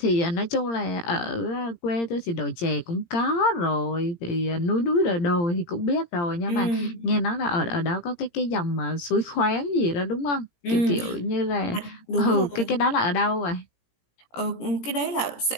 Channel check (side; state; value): right; late; 17 ms